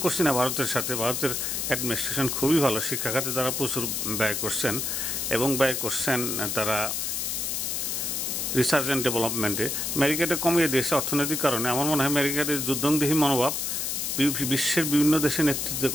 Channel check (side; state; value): left; noise; hiss, 1 dB below the sound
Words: করছি না ভারতের সাথে, ভারতের অ্যাডমিনিস্ট্রেশন খুবই ভালো, শিক্ষা খাতে তারা প্রচুর ব্যয় করছেন এবং ব্যয় করছেন তারা রিসার্চ অ্যান্ড ডেভেলপমেন্টে। আমেরিকাটা কমিয়ে দিয়েছে অর্থনৈতিক কারণে। আমার মনে হয় আমেরিকার যুদ্ধংদেহী মনোভাব বিশ্বের বিভিন্ন দেশে নেতৃত্ব